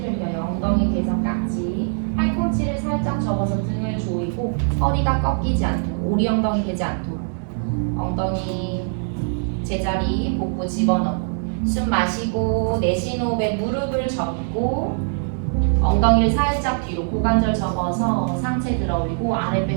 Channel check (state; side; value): silent; left; digital silence